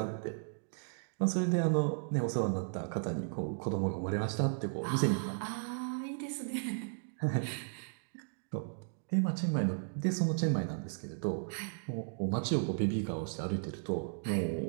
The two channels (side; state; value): left; silent; digital silence